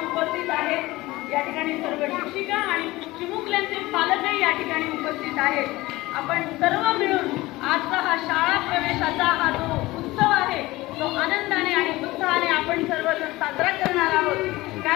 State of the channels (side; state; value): right; quieter; 19.4 dB